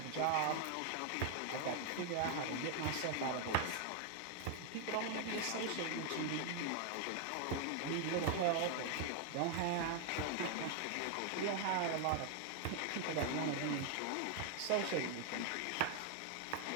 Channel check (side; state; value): both; different; correlation 0.00